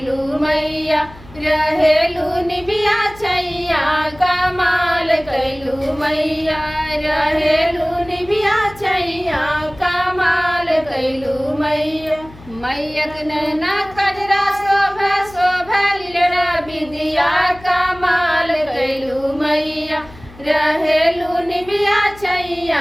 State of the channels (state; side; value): noise; left; hum, 20 dB below the sound